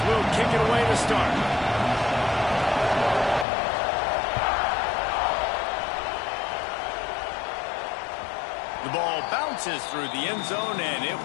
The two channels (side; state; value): right; drops out; at 3.5 s